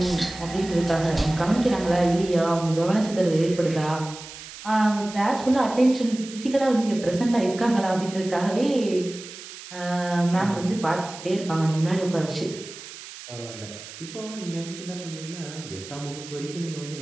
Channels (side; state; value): right; noise; hiss, 14 dB below the sound